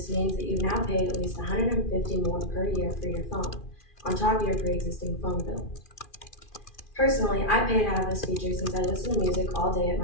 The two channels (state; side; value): late; right; 2.4 ms